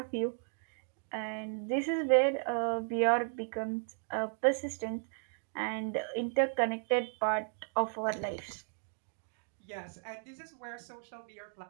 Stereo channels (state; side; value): silent; left; digital silence